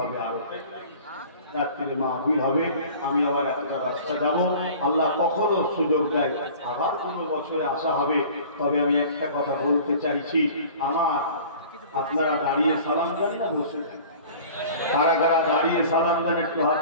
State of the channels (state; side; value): inverted; both; correlation -0.44